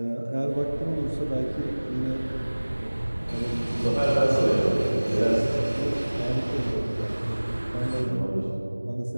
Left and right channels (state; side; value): inverted; both; correlation -1.00